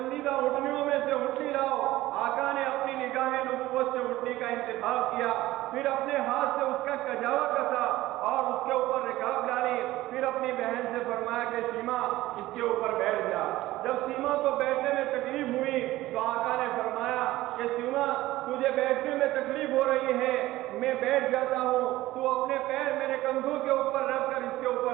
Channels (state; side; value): quieter; left; 16.9 dB